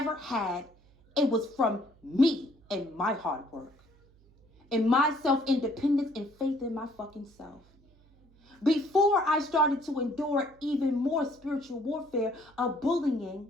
had, it was from me and my hard work. And my self-independence and faith in my fucking self. Before I started to endure even more spiritual warfare of bullying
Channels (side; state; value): right; noise; hum, 29 dB below the sound